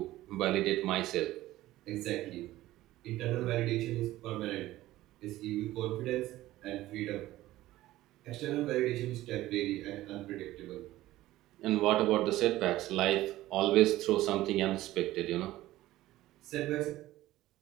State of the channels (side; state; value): left; quieter; 16.0 dB